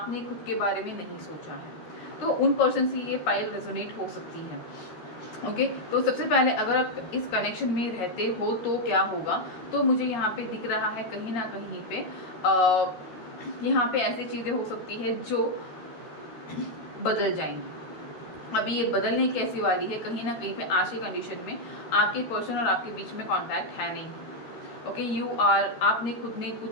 खुद के बारे में नहीं सोचा है। तो उन पर्सन से ये पाइल रेजोनेट हो सकती है। ओके तो सबसे पहले अगर आप इस कनेक्शन में रहते हो तो क्या होगा, तो मुझे यहाँ पे दिख रहा है कहीं ना कहीं पे यहाँ पे ऐसी चीज़ें हो सकती है जो बदल जाएंगी। अभी ये बदलने कैसी वाली है, कहीं ना कहीं पे आज की कंडीशन में आपके पर्सन और आपके बीच में कांटेक्ट है नहीं। ओके यू आर, आपने खुद ने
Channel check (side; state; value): right; late; 13 ms